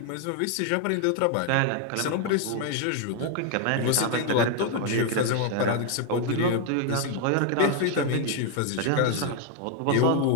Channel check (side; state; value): both; different; correlation 0.00